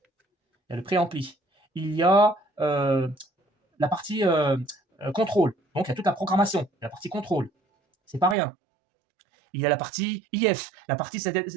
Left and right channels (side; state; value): left; drops out; at 8.3 s